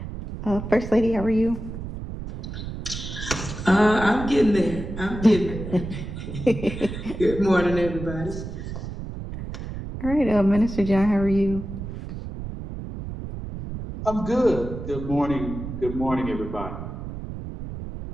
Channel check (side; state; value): right; noise; rumble, 8 dB below the sound